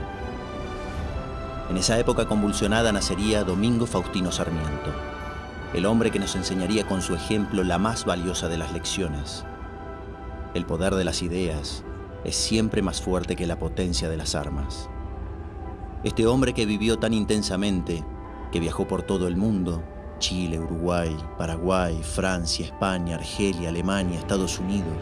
En esa época convulsionada nacería Domingo Faustino Sarmiento, el hombre que nos enseñaría con su ejemplo la más valiosa de las lecciones. El poder de las ideas es siempre más fuerte que la potencia de las armas. Este hombre que vivió tan intensamente, que viajó por todo el mundo, Chile, Uruguay, Paraguay, Francia, España, Argelia, Alemania, Estados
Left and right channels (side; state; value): both; identical; correlation 1.00